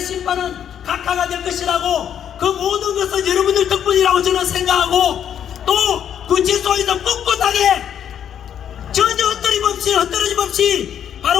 심판은 각하가 될 것이라고 그 모든 것은 여러분들 덕분이라고 저는 생각하고 또 구치소에서 꿋꿋하게 전혀 헛떨어짐 없이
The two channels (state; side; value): quieter; right; 9.2 dB